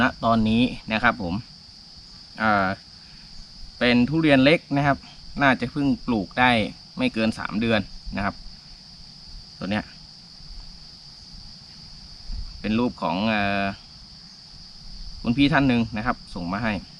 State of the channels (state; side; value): identical; both; correlation 1.00